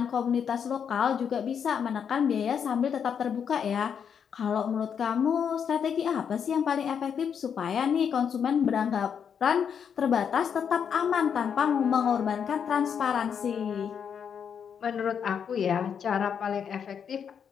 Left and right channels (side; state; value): right; quieter; 7.5 dB